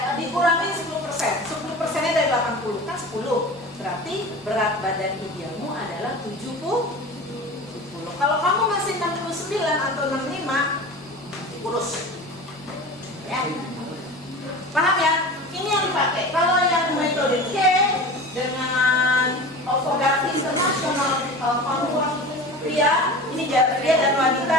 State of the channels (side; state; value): both; normal; correlation 0.34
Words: dikurangi 10%. 10%-nya dari 80 kan 10. Berarti berat badan idealmu adalah 70. Kalau kamu masih 69 atau 65, kurus. Ya. Paham ya? Ini yang dipakai. Kalau yang metode K dengan Ovogati International Formula pria, ini pria dan